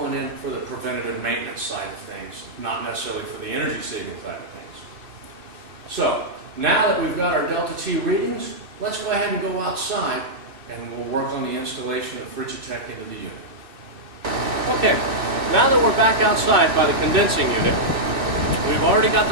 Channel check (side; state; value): left; late; 2.6 ms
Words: in for the preventative maintenance side of things, not necessarily for the energy saving side of things. So now that we've got our delta T readings, let's go ahead and go outside and we'll work on the installation of Frigi-Tech into the unit. Okay, now that we're back outside by the condensing unit, we've already got